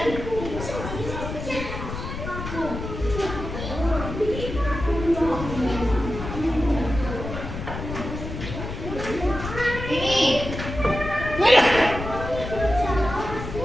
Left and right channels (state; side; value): noise; left; rumble, 7 dB below the sound